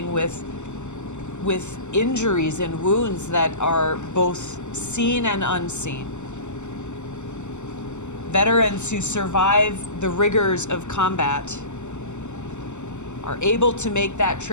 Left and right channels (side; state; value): right; late; 0.83 ms